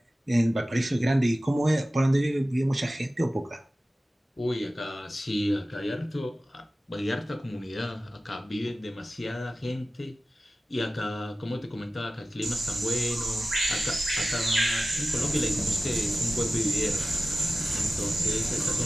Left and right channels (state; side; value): normal; both; correlation 0.96